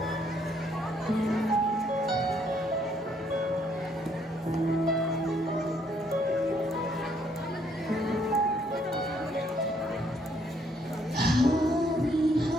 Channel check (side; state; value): both; normal; correlation 0.69